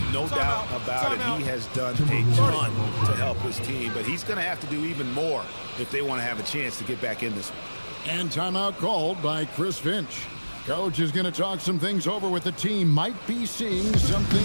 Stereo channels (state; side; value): inverted; both; correlation -1.00